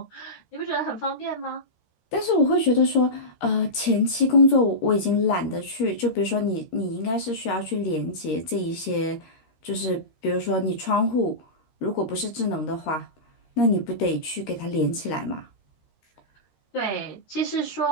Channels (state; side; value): late; right; 13 ms